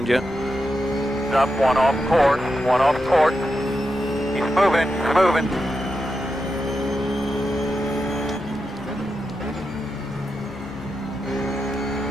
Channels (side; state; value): both; normal; correlation 0.88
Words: you. Up, 1 off course, 1 off course. He's moving, he's moving.